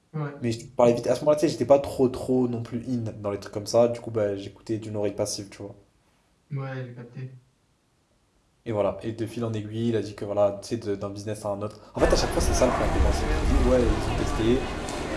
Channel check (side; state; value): both; identical; correlation 1.00